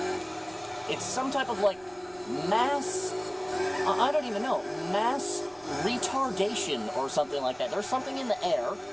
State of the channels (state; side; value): noise; right; rumble, 28 dB below the sound